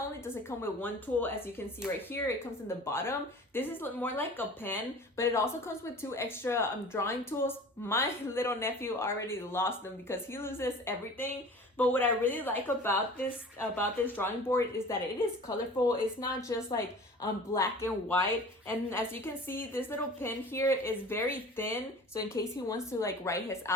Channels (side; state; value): both; normal; correlation 0.42